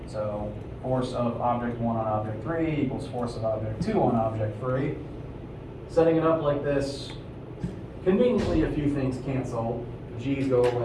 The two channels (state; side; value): identical; both; correlation 1.00